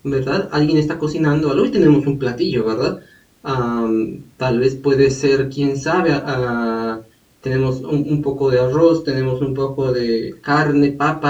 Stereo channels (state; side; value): identical; both; correlation 1.00